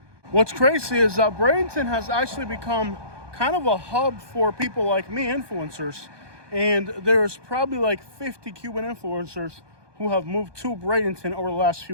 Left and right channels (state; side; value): late; left; 1.2 ms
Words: What's crazy is that Bradenton has actually become kind of a hub for people like me, influencers. And there's probably like 50 Cuban influencers who have moved to Bradenton over the last